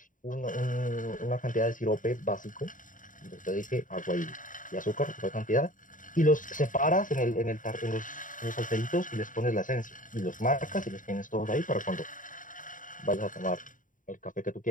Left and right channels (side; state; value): right; late; 0.38 ms